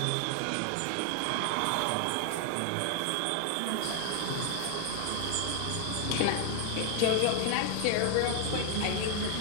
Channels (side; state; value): both; different; correlation 0.00